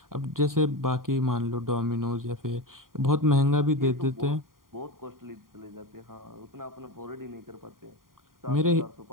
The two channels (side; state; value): left; late; 0.91 ms